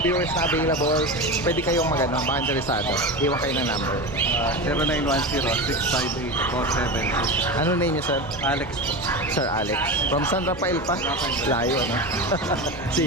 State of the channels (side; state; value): both; normal; correlation 0.24